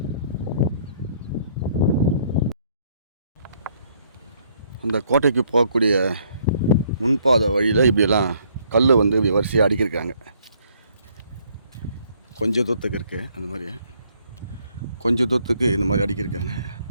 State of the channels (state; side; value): inverted; both; correlation -0.66